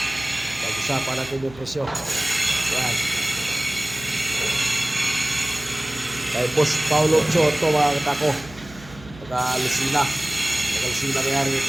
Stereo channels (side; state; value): right; noise; hum, 19 dB below the sound